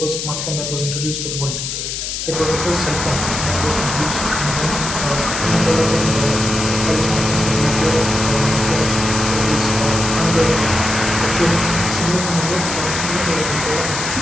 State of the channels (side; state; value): left; noise; hiss, 4 dB below the sound